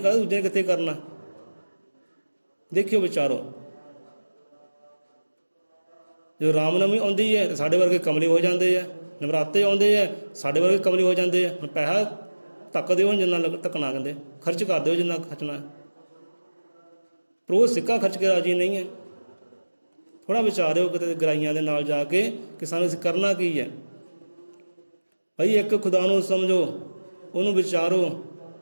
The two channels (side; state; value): both; inverted; correlation -1.00